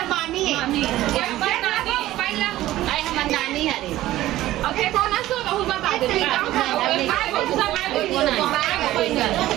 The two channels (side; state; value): left; quieter; 15.2 dB